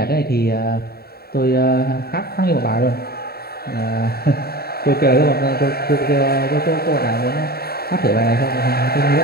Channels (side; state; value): right; late; 0.45 ms